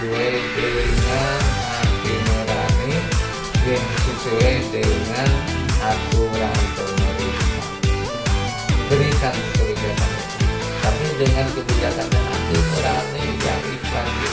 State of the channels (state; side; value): identical; both; correlation 1.00